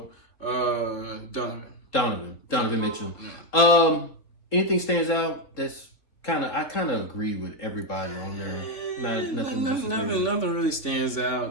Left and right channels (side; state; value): right; late; 3.5 ms